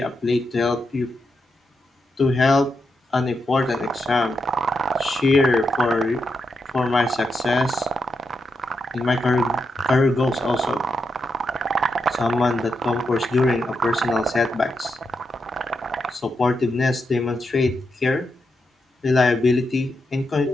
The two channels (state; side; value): normal; both; correlation 0.85